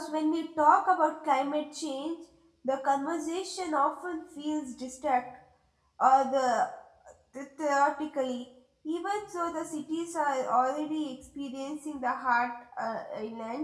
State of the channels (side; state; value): both; identical; correlation 1.00